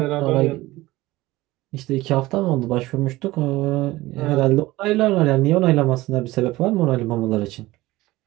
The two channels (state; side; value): quieter; left; 18.5 dB